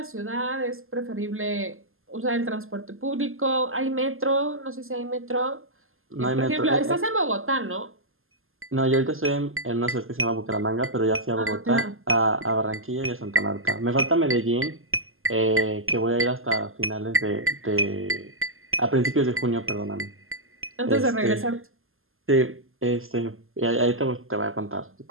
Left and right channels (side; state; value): left; late; 0.61 ms